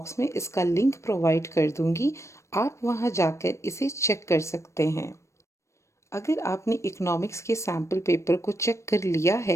में इसका लिंक प्रोवाइड कर दूंगी, आप वहां जाकर इसे चेक कर सकते हैं। अगर आपने इकोनॉमिक्स के सैम्पल पेपर को चेक कर लिया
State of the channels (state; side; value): late; right; 0.14 ms